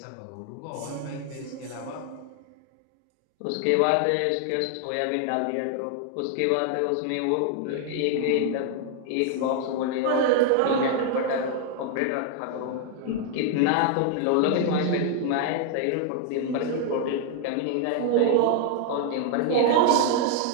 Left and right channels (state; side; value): different; both; correlation 0.00